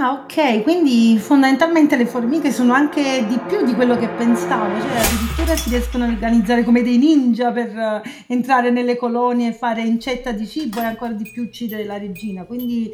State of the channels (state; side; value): identical; both; correlation 1.00